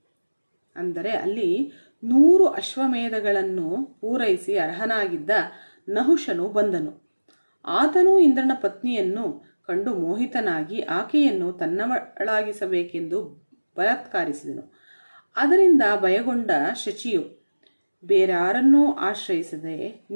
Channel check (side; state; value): both; inverted; correlation -1.00